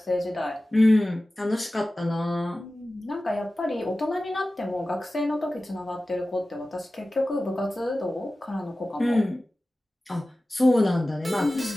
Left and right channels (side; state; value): both; normal; correlation 0.96